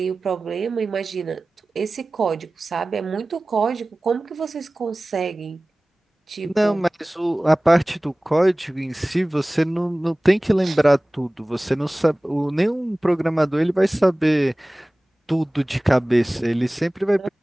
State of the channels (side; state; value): both; normal; correlation 0.98